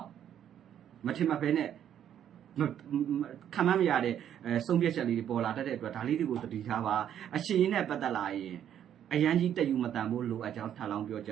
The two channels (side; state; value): left; quieter; 10.0 dB